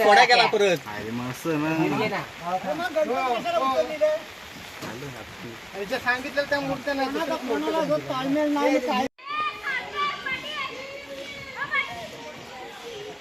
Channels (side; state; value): both; identical; correlation 1.00